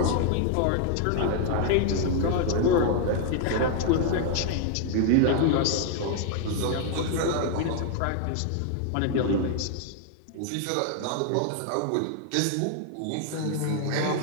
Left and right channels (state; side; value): different; both; correlation 0.00